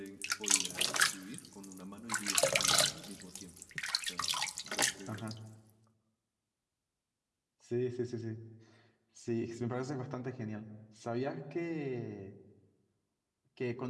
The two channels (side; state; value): both; identical; correlation 1.00